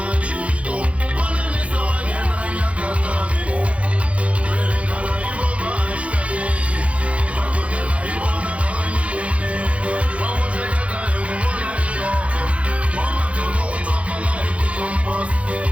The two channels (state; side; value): late; left; 0.063 ms